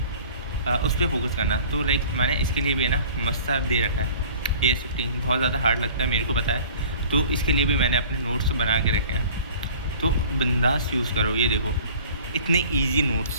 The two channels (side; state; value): both; inverted; correlation -0.47